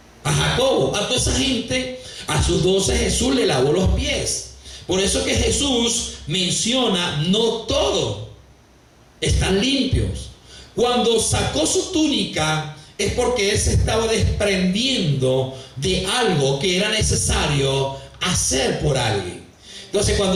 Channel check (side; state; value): both; identical; correlation 1.00